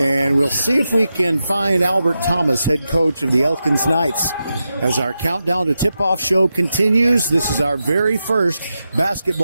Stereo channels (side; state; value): both; inverted; correlation -0.89